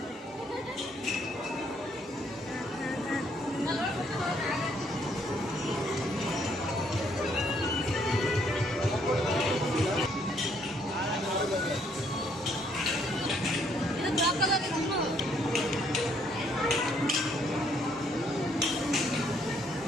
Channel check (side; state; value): both; normal; correlation 0.68